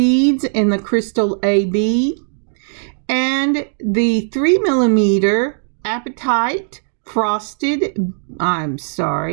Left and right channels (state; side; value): silent; left; digital silence